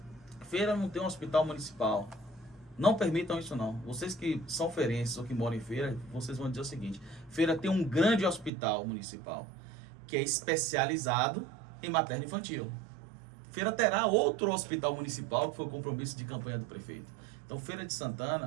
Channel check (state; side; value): drops out; left; at 8.5 s